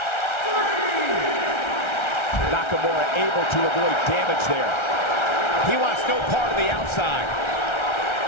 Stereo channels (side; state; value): right; late; 1.3 ms